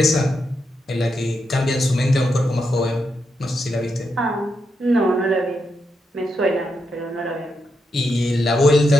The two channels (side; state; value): both; normal; correlation 0.83